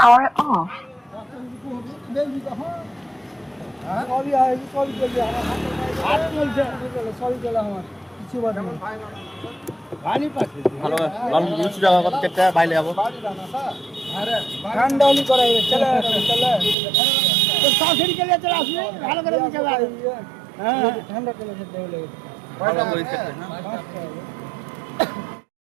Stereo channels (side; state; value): left; drops out; at 16.8 s